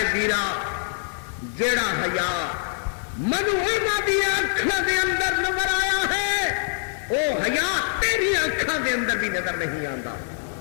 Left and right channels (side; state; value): right; silent; digital silence